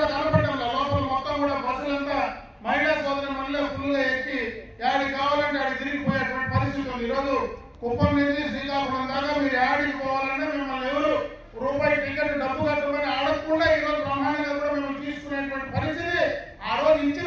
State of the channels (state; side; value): identical; both; correlation 1.00